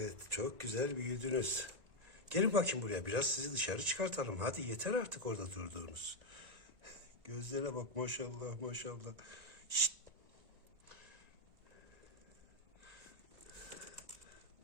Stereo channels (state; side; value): late; left; 1.9 ms